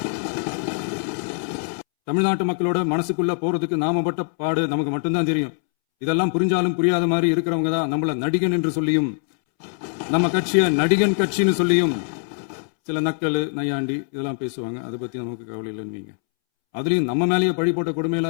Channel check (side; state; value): right; silent; 64 dB below the other